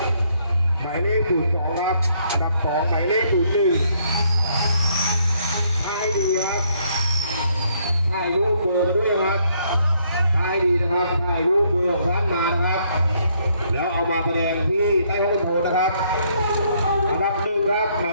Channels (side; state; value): both; inverted; correlation -0.70